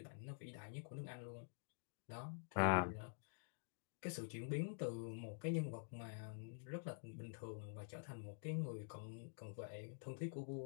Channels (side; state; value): right; silent; digital silence